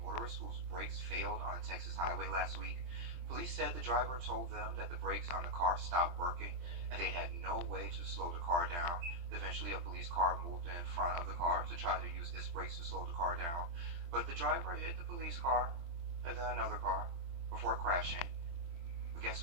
whose brakes failed on a Texas highway last week. Police said the driver told them that the brakes on the car stopped working and they had no way to slow the car down. Eventually, a police car moved in front of the car to try to use its brakes to slow the car down, but the driver hit the police car and then another car before crashing. But guess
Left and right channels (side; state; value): left; late; 23 ms